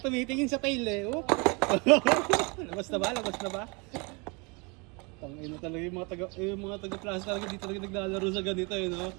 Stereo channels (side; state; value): left; quieter; 30.0 dB